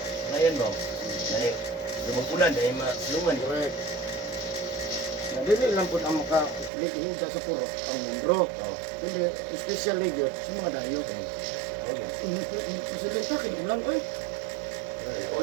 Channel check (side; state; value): left; drops out; at 6.7 s